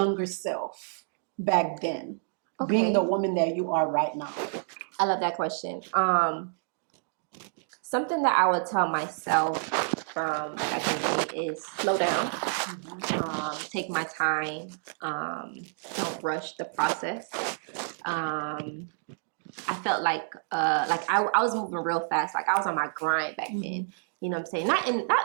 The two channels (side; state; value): left; silent; digital silence